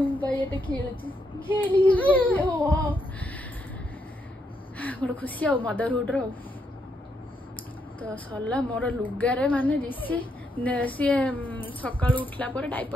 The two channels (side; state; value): both; normal; correlation 0.78